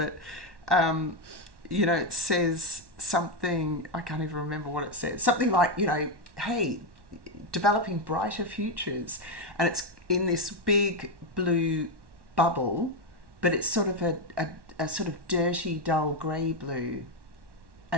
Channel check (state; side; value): late; left; 1.1 ms